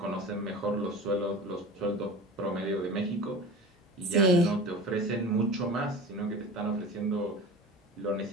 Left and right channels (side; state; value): both; normal; correlation 0.35